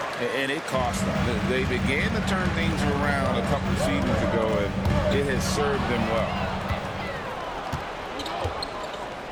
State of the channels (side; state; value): both; identical; correlation 1.00